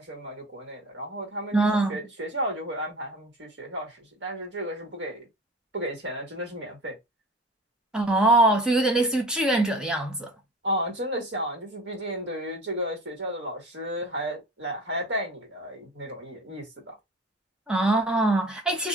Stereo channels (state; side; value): normal; both; correlation 0.38